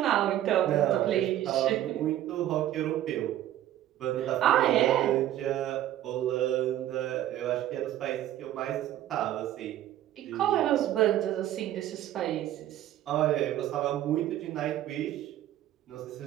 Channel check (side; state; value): left; quieter; 12.7 dB